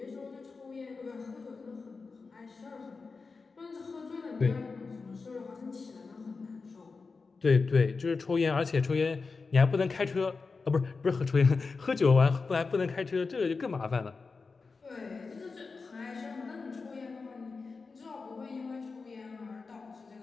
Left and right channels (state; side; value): quieter; right; 4.4 dB